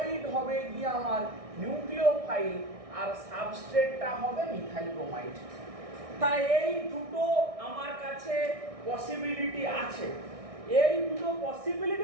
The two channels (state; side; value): late; left; 1.6 ms